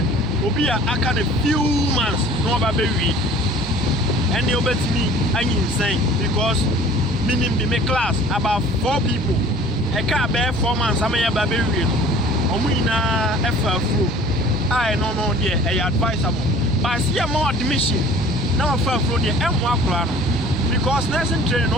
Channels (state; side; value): normal; both; correlation 0.48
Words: will be a kind of few months no baby. And they obey me and insane because meaning be my class about 4 people a car bear 4 months, I'm a baby. Omina FFU. I no dear, I advisable. But I see a more admission. Now for the M1 because nursing training